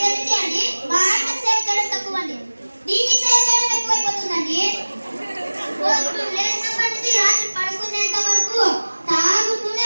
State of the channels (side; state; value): both; inverted; correlation -1.00